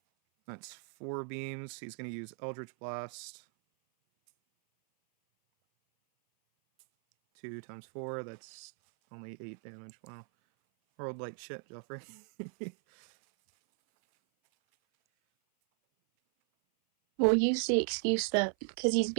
That's 4 beams. He's going to use Eldritch Blast. 2 times 4, that's only 8 damage. Wow. Rolled like shit, Joffrey. We'll use the excuse that because he's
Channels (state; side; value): silent; left; 54 dB below the other